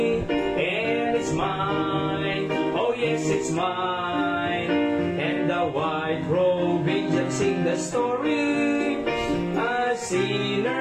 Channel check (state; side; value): identical; both; correlation 1.00